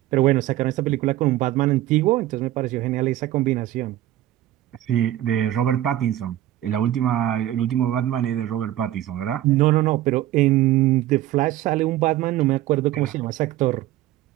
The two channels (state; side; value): quieter; left; 14.1 dB